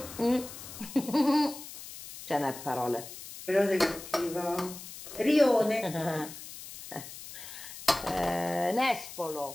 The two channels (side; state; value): left; noise; hiss, 13 dB below the sound